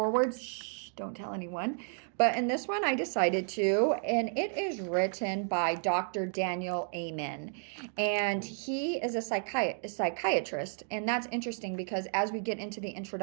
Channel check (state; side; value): silent; left; 56 dB below the other